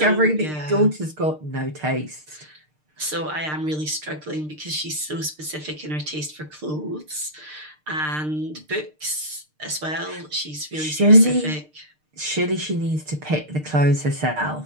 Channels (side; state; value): left; late; 6.6 ms